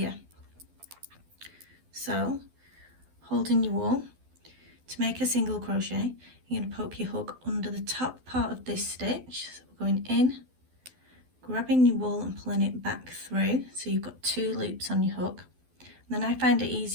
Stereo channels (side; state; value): left; late; 12 ms